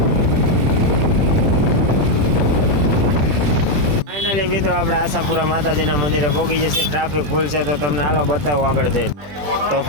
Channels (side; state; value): left; late; 20 ms